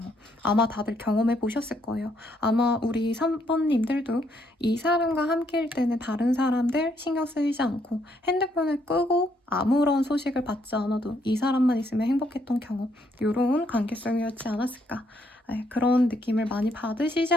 아마 다들 경험해 보셨을 거예요. 아마 우리 3번님들도 이 사람과 함께일 때는 다른 사람들 신경 쓰이지 않고 핸드폰을 끄고 아무런 소식을 받지 않아도 이 사람만 있으면 행복했던 경험. 이런 관계성이었지 않았을까. 네, 그런 느낌을 많이 받으시지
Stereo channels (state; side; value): normal; both; correlation 0.72